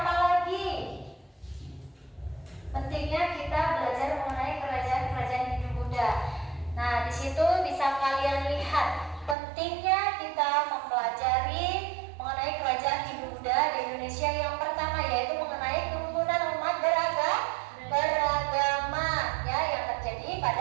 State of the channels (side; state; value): left; drops out; at 9.3 s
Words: lagi? Pentingnya kita belajar mengenai kerajaan-kerajaan Hindu Buddha. Nah, di situ bisa kalian lihat pentingnya kita mempelajari mengenai kerajaan Hindu Buddha di Indonesia. Yang pertama yaitu mengenai kerukunan umat beragama, ya, yang terjadi